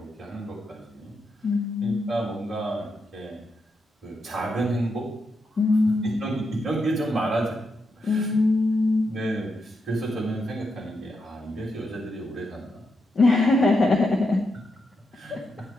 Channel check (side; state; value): both; normal; correlation 0.84